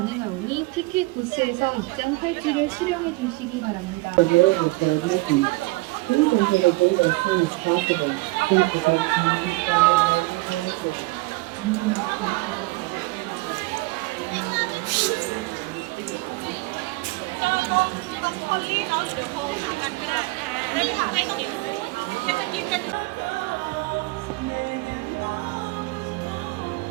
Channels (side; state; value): left; quieter; 23.2 dB